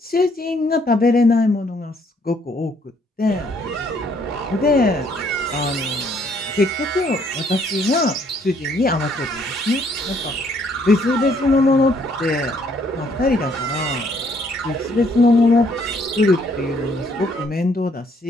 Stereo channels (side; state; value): both; normal; correlation 0.66